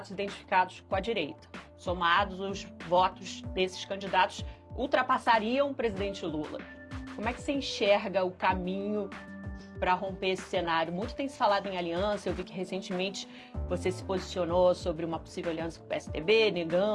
identificados com a direita. Somados, os votos desses candidatos ultrapassariam o presidente Lula. Como é que você enxerga o caminho para romper esse cenário? Muito tem se falado em aliança, eu vi que recentemente você se posicionou sobre uma possível aliança com o PSDB,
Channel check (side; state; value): both; identical; correlation 1.00